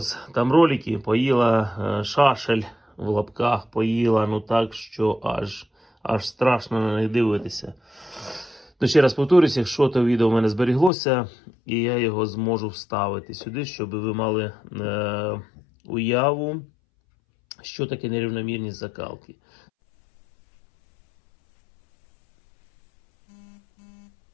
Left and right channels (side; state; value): right; drops out; at 10.9 s